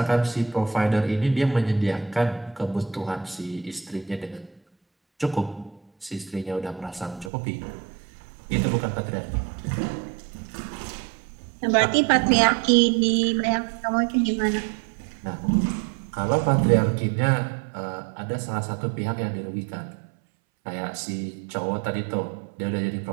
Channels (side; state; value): left; drops out; at 7.3 s